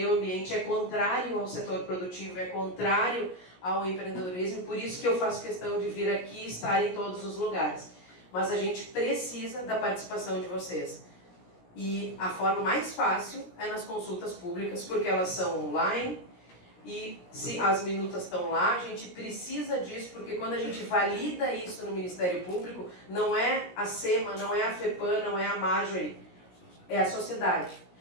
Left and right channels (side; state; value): right; late; 17 ms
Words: ambiente é contrário ao setor produtivo, é contrário ao empreendedorismo, por isso que eu faço questão de vir aqui e estar em todos os lugares. Mas a gente precisa da participação de vocês. E a forma mais fácil é nas consultas públicas, porque elas são online, e se as minutas estão lá, a gente precisa disso, porque quando a gente valida isso no Ministério Público, não é a SEMA, não é a FEPAM, não é a Marjorie, é a sociedade.